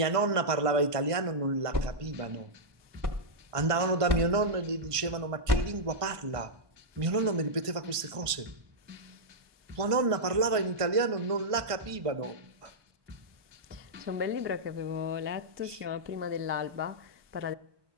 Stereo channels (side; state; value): left; late; 1.5 ms